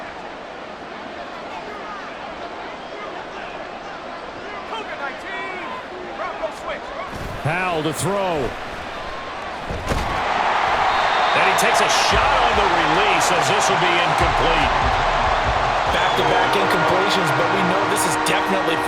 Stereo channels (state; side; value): identical; both; correlation 1.00